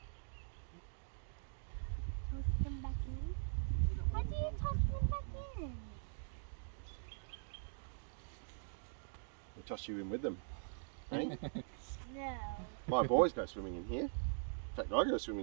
Toss them back in? How do you toss them back in? I toss you in with them. Eh? No. My boys go swimming in here. In fact, I go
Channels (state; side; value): silent; left; digital silence